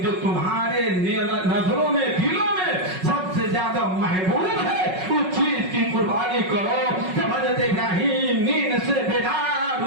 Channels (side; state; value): left; late; 5.4 ms